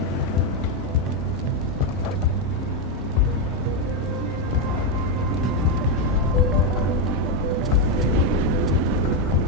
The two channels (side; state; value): both; normal; correlation 0.04